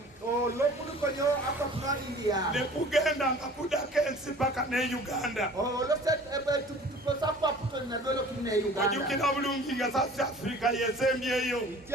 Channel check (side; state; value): both; normal; correlation 0.47